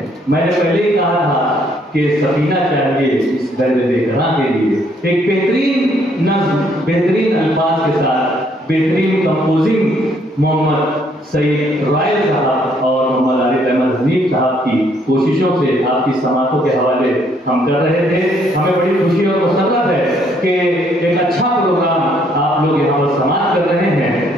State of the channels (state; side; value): normal; both; correlation 0.68